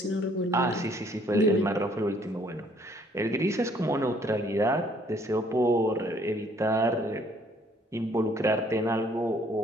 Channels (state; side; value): normal; both; correlation 0.62